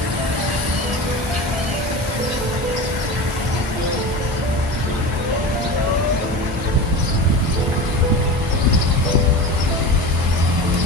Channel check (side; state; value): both; normal; correlation 0.29